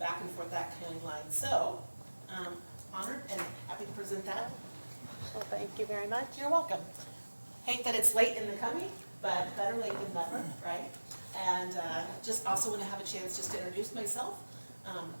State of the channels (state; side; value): inverted; both; correlation -1.00